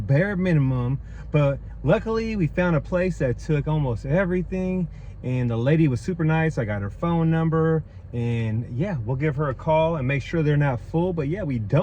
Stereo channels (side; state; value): both; identical; correlation 1.00